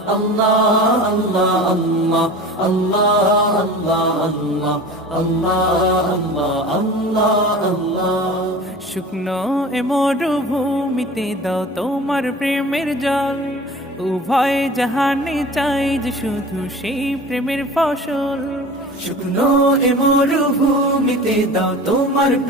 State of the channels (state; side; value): normal; both; correlation 0.38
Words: Allah Allah Allah Allah শুকনো এ মরুভূমিতে দাও তোমার প্রেমের জল, উভয় জাহানে চাই যে শুধু সেই প্রেমের ফসল। শুকনো এ মরুভূমিতে দাও তোমার